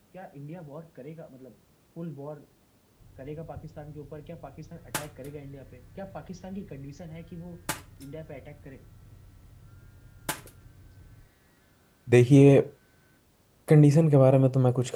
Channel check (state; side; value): identical; both; correlation 1.00